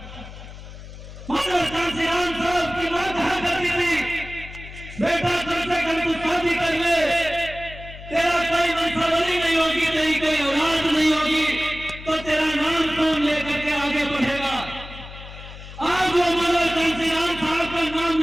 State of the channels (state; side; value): noise; left; hum, 14 dB below the sound